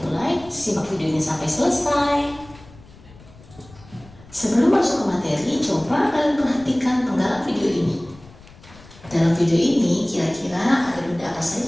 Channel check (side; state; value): left; noise; rumble, 22 dB below the sound